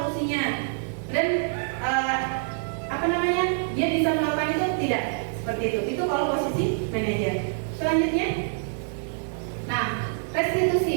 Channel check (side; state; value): left; silent; digital silence